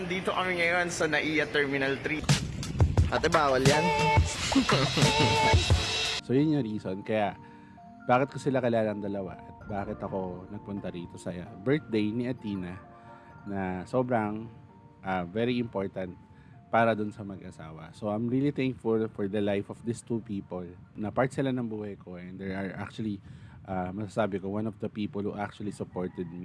kami ngayon sa NAIA Terminal 3. Ate, bawal yan? So, yun yung reason. Kaya, bakit ko sila kilala ng dalawa at bakit ako nagpunta rito sa birthday ni Athena na sobrang very important para dun sa mag-asawa. So, I'm really thankful for the life of these two people na part sila ng buhay ko and they are actually masasabi ko, one of the people who actually supported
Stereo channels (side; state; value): both; identical; correlation 1.00